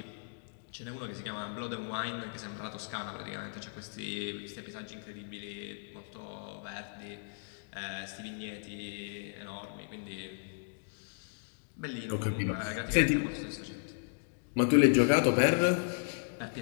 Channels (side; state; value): right; silent; digital silence